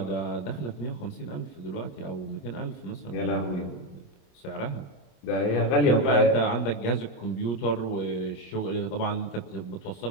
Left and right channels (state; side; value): late; right; 28 ms